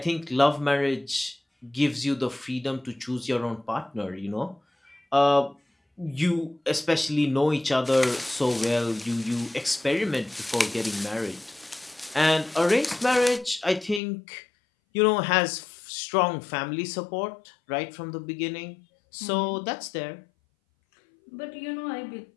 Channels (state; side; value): drops out; right; at 14.0 s